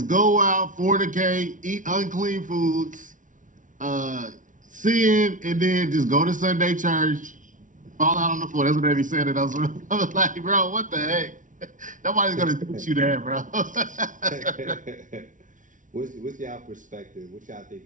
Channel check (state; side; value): late; left; 0.37 ms